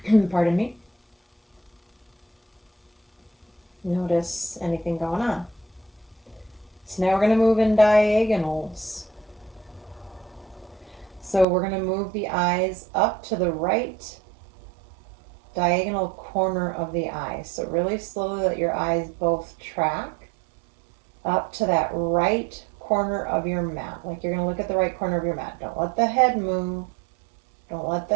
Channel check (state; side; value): drops out; left; at 11.5 s